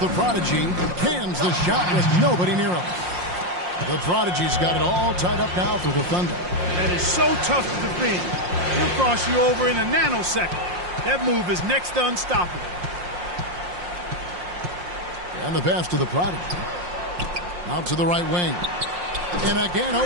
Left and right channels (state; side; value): late; left; 5.6 ms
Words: prodigy. Cans the shot with nobody near him. The prodigy's got it all tied up now for the Thunder. That is so tough to defend. He'll cross you over in a nanosecond. That move is next to unstoppable. And the pass to the prodigy. Out to the right wing. And again,